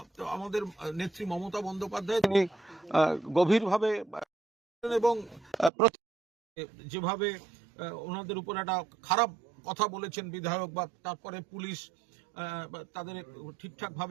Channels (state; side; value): drops out; left; at 5.7 s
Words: আমাদের নেত্রী মমতা বন্দ্যোপাধ্যায় তিনি গভীরভাবে এবং যেভাবে ওনাদের উপর একটা খারাপ কথা বলেছেন বিধায়ক, বা তারপরে পুলিশ তাদের ঠিকঠাক